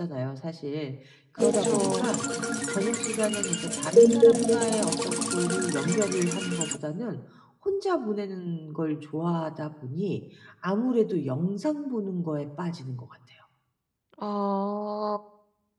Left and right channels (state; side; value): identical; both; correlation 1.00